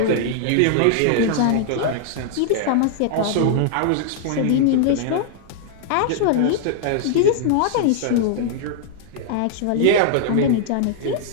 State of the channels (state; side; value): different; both; correlation -0.01